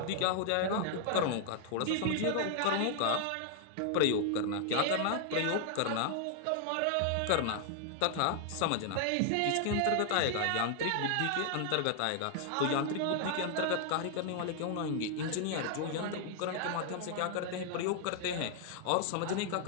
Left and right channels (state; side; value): different; both; correlation 0.00